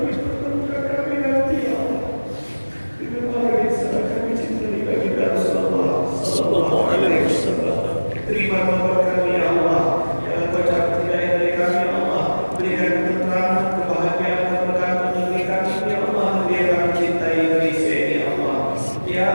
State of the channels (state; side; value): inverted; both; correlation -1.00